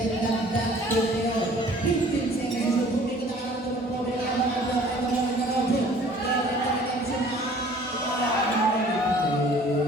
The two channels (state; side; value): normal; both; correlation 0.52